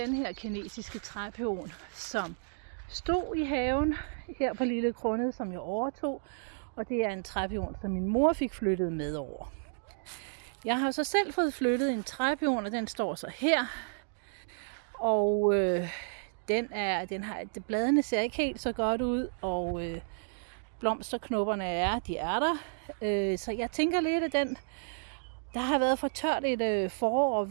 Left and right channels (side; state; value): left; silent; digital silence